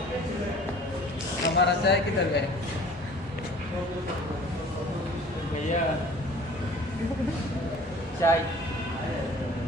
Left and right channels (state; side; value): normal; both; correlation 0.48